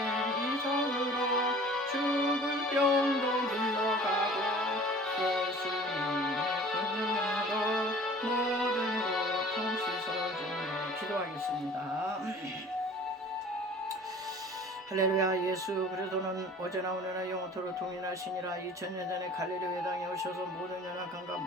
이정으로 죽을 병도 물러가고 예수님의 권능으로 모든 고통 씻어주며 기도하겠습니다. 할렐루야. 예수 그리스도는 어제나 오늘나 영원토록 동일하시니라. 2000년 전에 갈릴리 땅에 오셔서 모든 연약함과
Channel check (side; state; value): both; normal; correlation 0.46